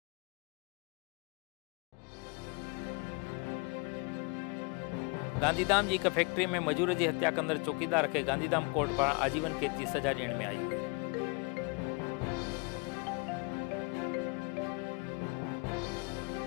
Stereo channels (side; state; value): right; quieter; 32.8 dB